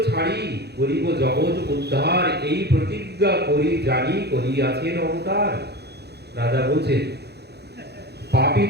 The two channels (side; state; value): left; late; 0.48 ms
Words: ছাড়ি করিব জগৎ উদ্ধার, এই প্রতিজ্ঞা করি জানি করিয়াছেন অবতার। রাজা বলছেন পাপী